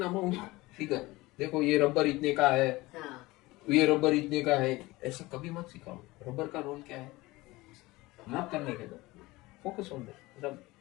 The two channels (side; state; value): right; quieter; 20.5 dB